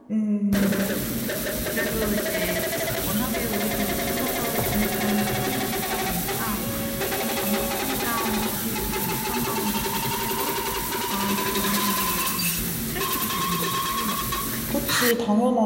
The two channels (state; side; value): identical; both; correlation 1.00